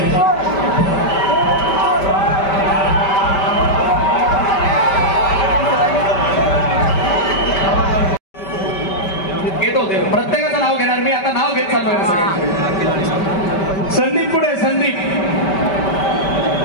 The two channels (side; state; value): right; late; 5.2 ms